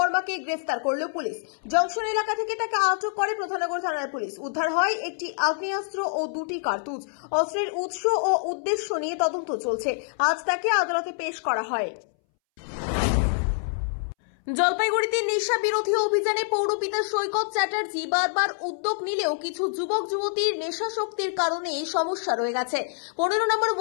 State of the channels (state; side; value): silent; right; 61 dB below the other